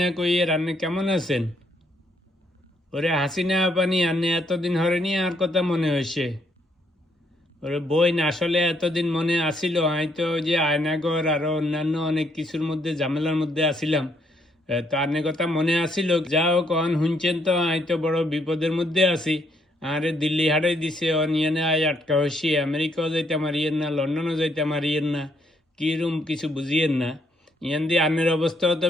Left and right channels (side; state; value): both; normal; correlation 0.72